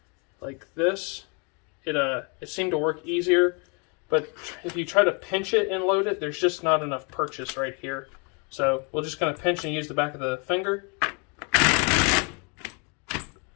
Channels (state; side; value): quieter; right; 34.2 dB